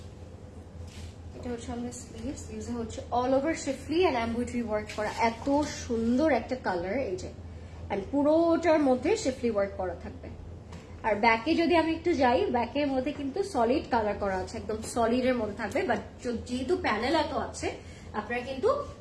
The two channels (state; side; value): identical; both; correlation 1.00